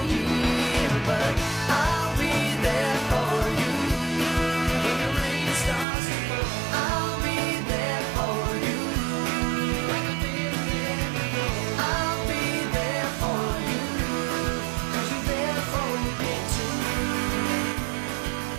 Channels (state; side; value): drops out; left; at 5.9 s